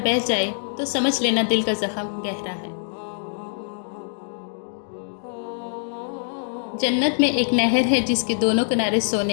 بہہ جائے تو سمجھ لینا دل کا زخم گہرا ہے۔ جنت میں ایک نہر ہے جس کے دونوں کنارے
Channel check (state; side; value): silent; right; digital silence